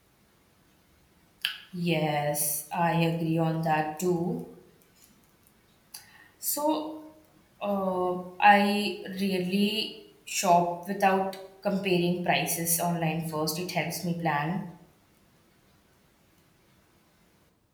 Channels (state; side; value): identical; both; correlation 1.00